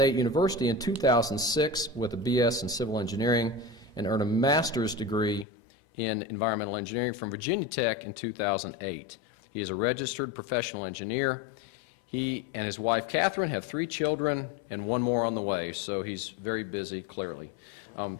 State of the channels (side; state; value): right; drops out; at 5.5 s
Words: University in 2006 with a BS in civil engineering and earned a master's degree in environmental engineering from Virginia Tech in 2008. He is a registered professional engineer. He and his wife Catherine have 3 children and 1 more on the way, so he's very busy, clearly.